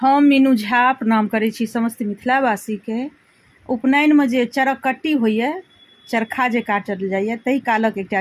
हम मीनू झा प्रणाम करै छी समस्त मिथिलावासीके। उपनयनमे जे चरकट्टी होइए, चरखा जे काटल जाइए, ताहि कालक एकटा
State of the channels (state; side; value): identical; both; correlation 1.00